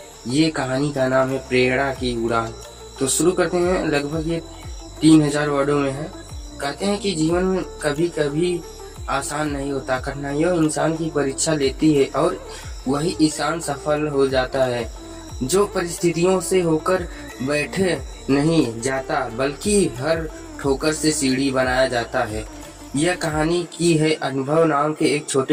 ये कहानी का नाम है प्रेरणा की उड़ान। तो शुरू करते हैं। लगभग ये 3000 वर्डों में है। कहते हैं कि जीवन में कभी कभी आसान नहीं होता, कठिनाइयों इंसान की परीक्षा लेती है और वही इंसान सफल हो जाता है जो परिस्थितियों से होकर बैठे नहीं जाता, बल्कि हर ठोकर से सीढ़ी बनाया जाता है। यह कहानी की है अनुभव नाम के एक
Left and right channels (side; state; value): both; identical; correlation 1.00